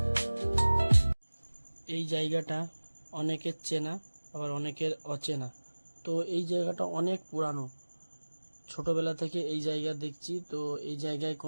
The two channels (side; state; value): both; inverted; correlation -1.00